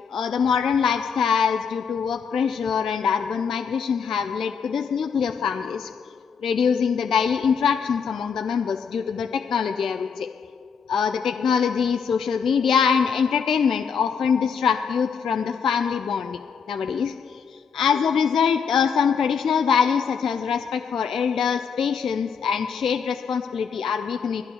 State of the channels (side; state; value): right; quieter; 6.5 dB